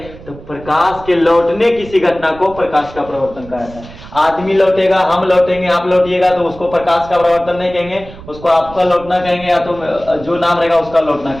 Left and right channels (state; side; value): noise; right; rumble, 17 dB below the sound